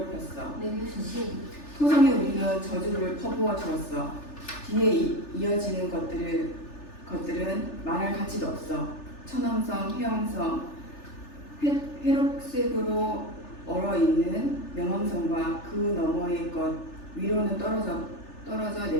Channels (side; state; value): right; late; 3.4 ms